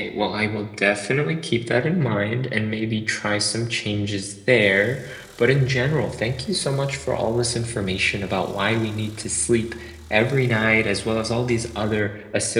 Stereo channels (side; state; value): both; identical; correlation 1.00